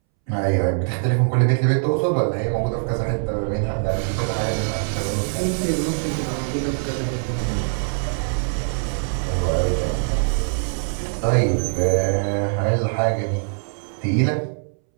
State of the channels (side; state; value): left; silent; 63 dB below the other